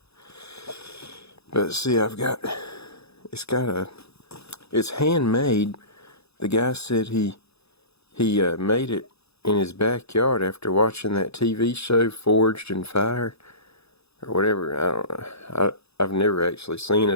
But see, it's handmade. The guy said he made it in his backyard after watching that TV show Forged in Fire or whatever. I don't know. I've never actually seen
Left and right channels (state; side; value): late; right; 0.79 ms